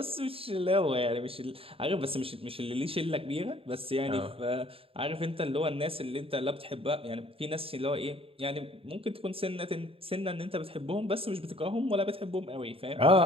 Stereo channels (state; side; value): late; left; 0.27 ms